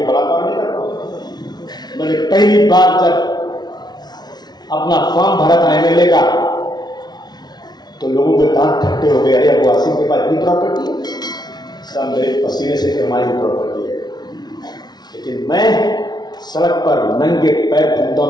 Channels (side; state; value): right; late; 0.19 ms